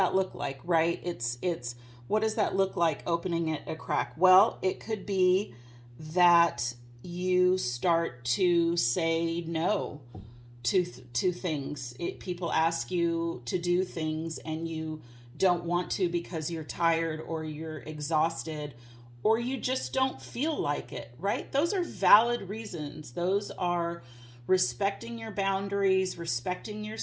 look like, right? It's what does that look like, opening it a crack? Well, it could be that you start to say no to things. People ask you to do things and you don't want to because you're tired or you're exhausted or you just don't feel like it, right? Those are valid reasons. Those are respecting your boundaries, respecting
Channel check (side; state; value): both; identical; correlation 1.00